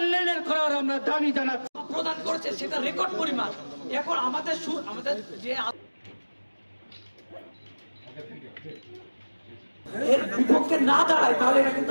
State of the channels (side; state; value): both; inverted; correlation -1.00